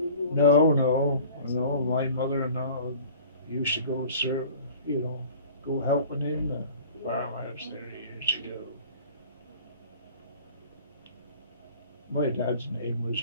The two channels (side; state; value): both; inverted; correlation -0.45